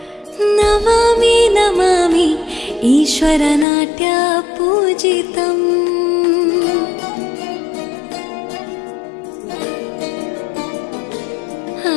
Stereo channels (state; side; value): drops out; right; at 3.7 s